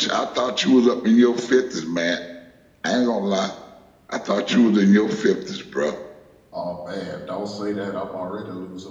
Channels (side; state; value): both; identical; correlation 1.00